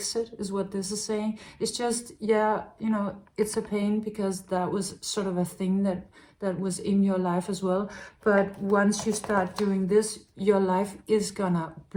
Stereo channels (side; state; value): both; identical; correlation 1.00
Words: it, is what this is saying. It's just, yeah, you know, it's a pain because that was sort of a thing that was in your life as well. But once you start doing this, your life is gonna